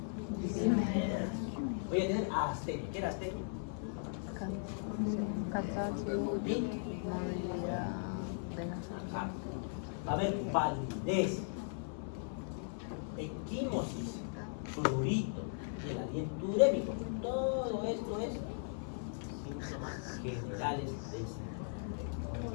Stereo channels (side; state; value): right; silent; 52 dB below the other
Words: Voy a tener astenia. ¿Qué era astenia? Cansancio, movilidad de la sangre. Va a haber validez, equimosis, prurito, y el aliento urémico. Todo esto es síntomas generales del síndrome.